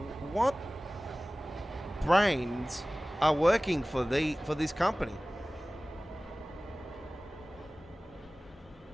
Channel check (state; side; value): normal; both; correlation 0.98